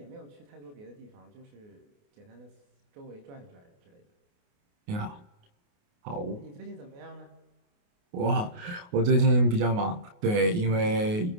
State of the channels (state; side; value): late; left; 28 ms